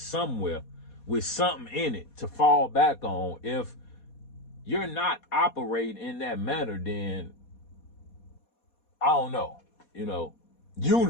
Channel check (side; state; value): right; late; 4.2 ms